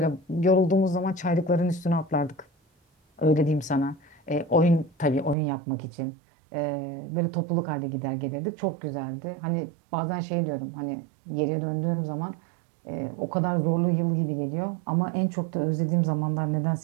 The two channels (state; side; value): drops out; left; at 5.4 s